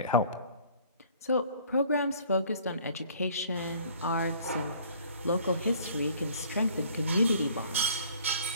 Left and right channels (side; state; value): both; inverted; correlation -0.54